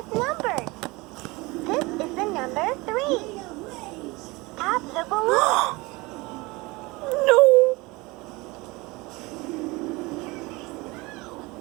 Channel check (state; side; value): quieter; left; 23.5 dB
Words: numbers. This is the number 3. Tap the balloon. No.